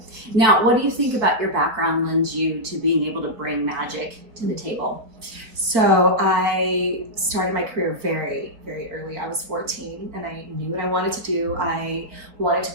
Now, what do you think about your background lends you to being able to bring magic to the table? So I started my career very, very early. I was 14 and I knew what I wanted to do. I wanted to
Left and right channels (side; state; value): left; late; 4.3 ms